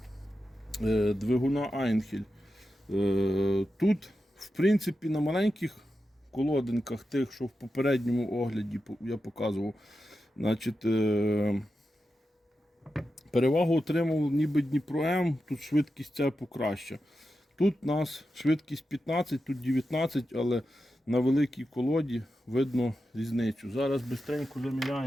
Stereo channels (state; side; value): normal; both; correlation 0.90